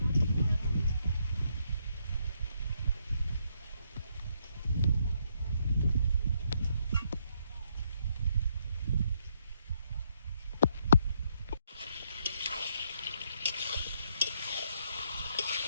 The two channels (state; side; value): inverted; both; correlation -0.74